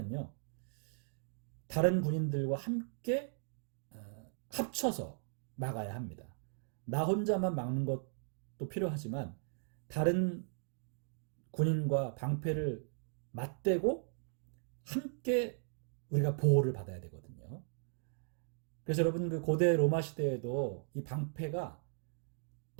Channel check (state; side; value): silent; left; digital silence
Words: 다른 군인들과 함께 합쳐서 막아야 합니다. 나 혼자만 막는 것도 필요하지만 다른 군인과 방패를 맞대고 함께 우리가 보호를 받아야 되거든요. 그래서 여러분, 그 고대 로마 시대에도 이 방패가